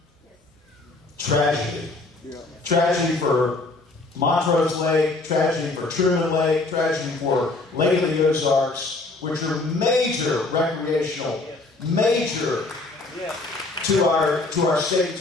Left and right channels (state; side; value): quieter; right; 3.3 dB